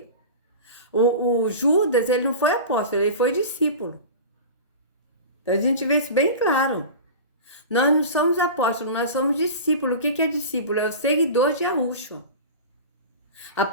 O Judas, ele não foi apóstolo, ele foi discípulo. Então a gente vê isso bem claro. Nós não somos apóstolos, nós somos discípulos. O que é discípulo? É o seguidor de Yahusha.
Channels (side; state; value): both; inverted; correlation -0.32